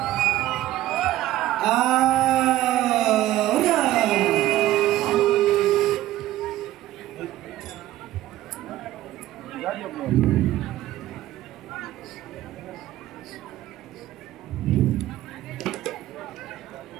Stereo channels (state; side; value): quieter; left; 14.8 dB